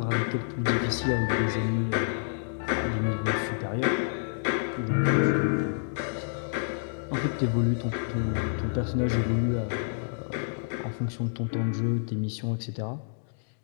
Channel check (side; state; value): right; silent; digital silence